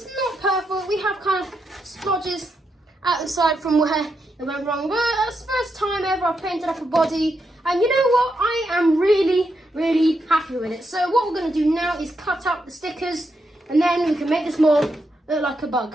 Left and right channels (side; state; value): both; normal; correlation 0.83